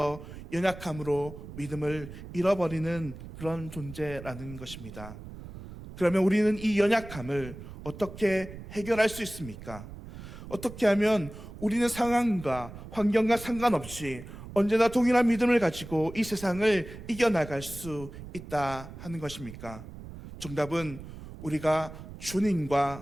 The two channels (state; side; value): noise; right; rumble, 13 dB below the sound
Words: 연약함으로 믿음을 잃어버리는 그런 존재라는 것입니다. 그러면 우리는 이 연약함을 어떻게 해결할 수 있습니까? 어떻게 하면 우리는 상황과 환경과 상관없이 언제나 동일한 믿음을 가지고 이 세상을 이겨나갈 수 있다 하는 것입니까? 정답은 우리가